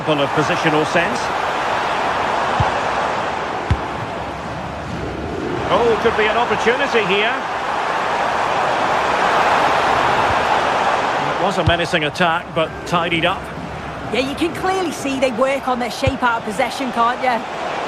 of positional sense. Oh, could be an opportunity here. It was a menacing attack, but tidied up. Yeah, you can clearly see they work on their shape out of possession, can't you?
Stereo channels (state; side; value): identical; both; correlation 1.00